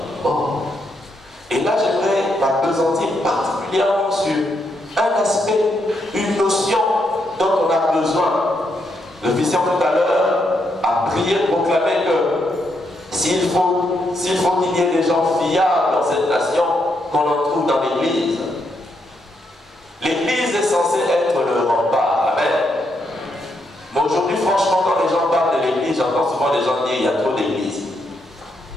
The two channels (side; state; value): both; normal; correlation 0.79